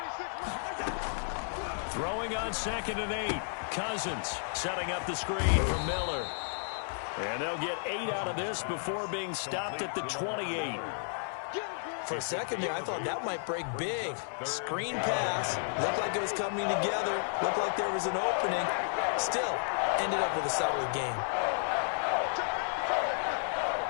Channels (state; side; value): silent; right; 56 dB below the other